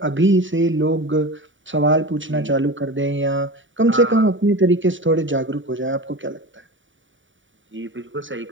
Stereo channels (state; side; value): late; left; 0.56 ms